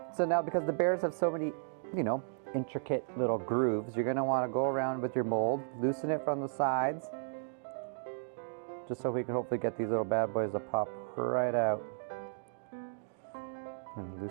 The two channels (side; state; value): left; silent; digital silence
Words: So now because the bears have so many, you know, intricate little grooves, you're gonna wanna go around with your mold, loosen it from the sides, just so we can hopefully get these little bad boys to pop right out. And